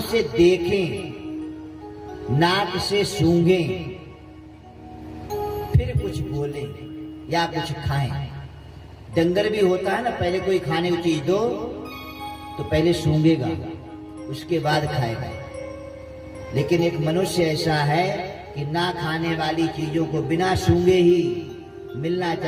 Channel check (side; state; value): both; identical; correlation 1.00